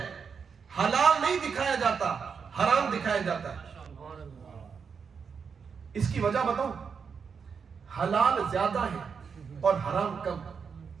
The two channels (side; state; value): left; quieter; 6.1 dB